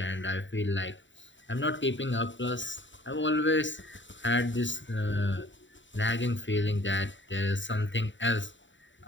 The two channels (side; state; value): right; late; 0.54 ms